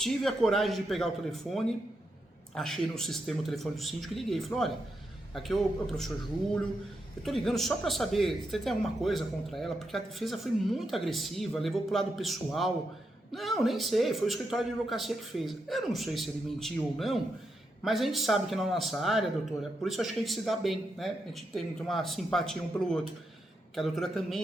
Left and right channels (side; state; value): both; normal; correlation 0.84